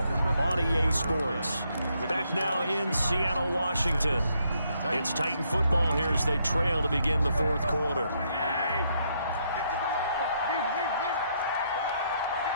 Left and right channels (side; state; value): both; inverted; correlation -0.74